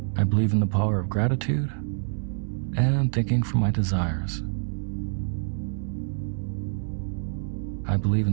I believe in the power of gratitude and thinking for my desires. I believe in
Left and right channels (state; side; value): silent; left; 60 dB below the other